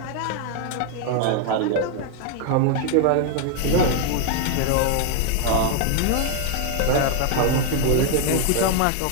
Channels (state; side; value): different; both; correlation 0.00